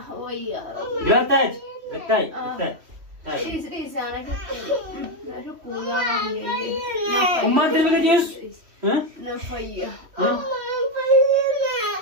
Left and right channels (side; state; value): left; late; 3.1 ms